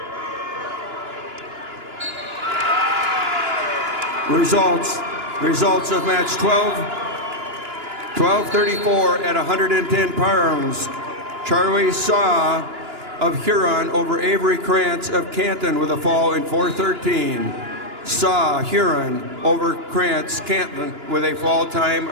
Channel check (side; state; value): left; late; 2.9 ms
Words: Results of match 1234 at 110 pounds. Charlie Saw of Huron over Avery Krantz of Canton with a fall in 4:13. Saw Huron over Krantz Canton with a fall time